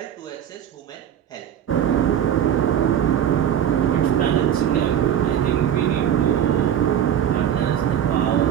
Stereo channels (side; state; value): left; quieter; 9.7 dB